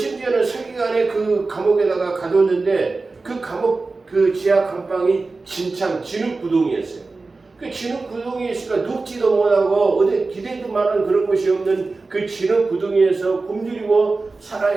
서기관의 그 감옥에다가 가뒀는데 그 감옥 지하 감방이 진흙구덩이였어요. 그 진흙구덩이에 있으니까 눕지도 못하고 어디 기대도 많은 그런 것이 없는 그 진흙구덩이에서 굶주리고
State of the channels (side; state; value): left; quieter; 3.7 dB